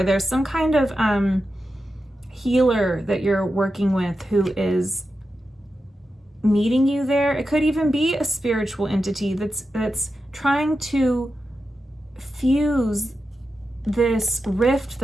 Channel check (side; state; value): both; normal; correlation 0.90